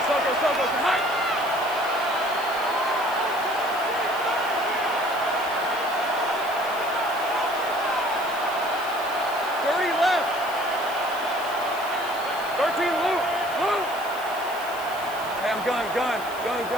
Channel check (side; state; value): left; noise; hiss, 16 dB below the sound